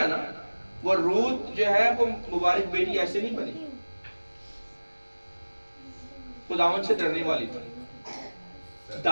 نا، وہ رود جو ہے وہ مبارک بیٹی ایسے نہیں بنی، خداوند سے ڈرنے والی تھی،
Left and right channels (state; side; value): inverted; both; correlation -1.00